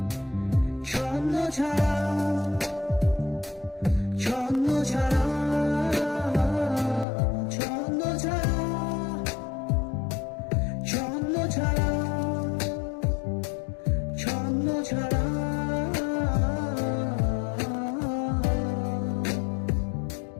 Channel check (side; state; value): right; drops out; at 7.1 s